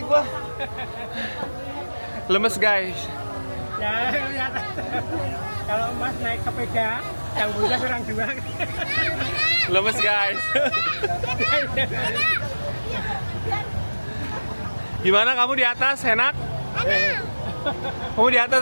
gua. Lemes guys. Ya, lihat. Kalau Mas naik sepeda, yang bocah kurang 2. Lemes guys. Gimana kamu di atas? Enak? Kamu di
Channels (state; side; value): inverted; both; correlation -1.00